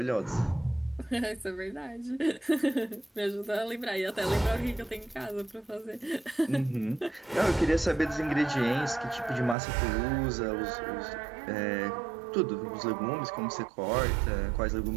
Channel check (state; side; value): drops out; left; at 9.6 s